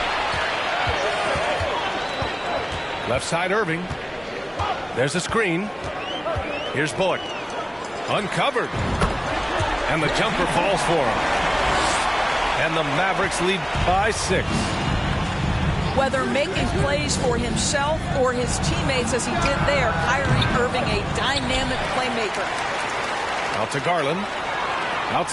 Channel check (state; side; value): identical; both; correlation 1.00